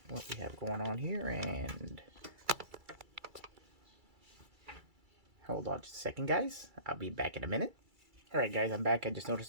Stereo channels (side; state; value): left; late; 2.3 ms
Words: what we have going on here, and hold on just a second, guys. I'll be back in a minute. Alright guys, I'm back. I just